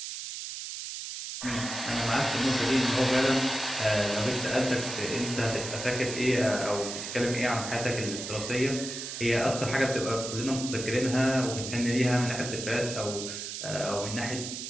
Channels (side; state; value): right; noise; hiss, 7 dB below the sound